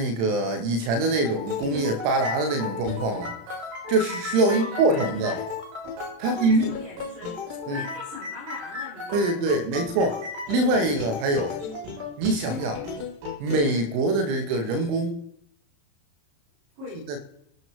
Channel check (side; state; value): left; late; 35 ms